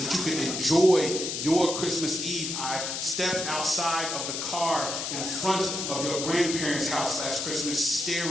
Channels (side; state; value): left; noise; hiss, 3 dB below the sound